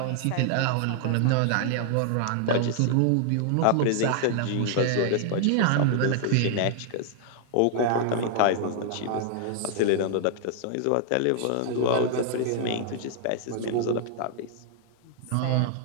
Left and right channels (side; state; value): both; different; correlation -0.01